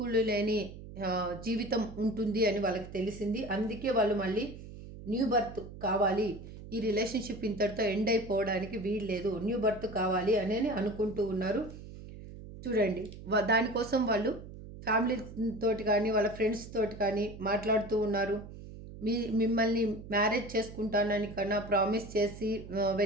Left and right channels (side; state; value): right; noise; hum, 14 dB below the sound